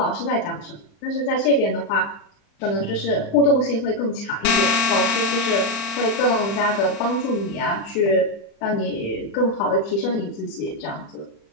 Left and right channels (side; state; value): right; late; 35 ms